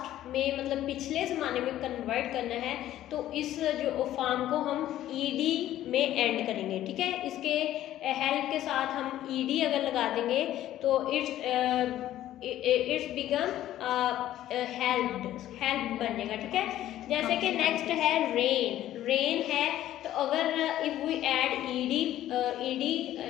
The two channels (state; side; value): quieter; right; 13.1 dB